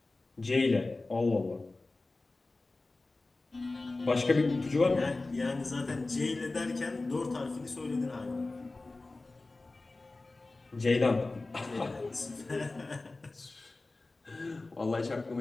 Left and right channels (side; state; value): right; quieter; 3.3 dB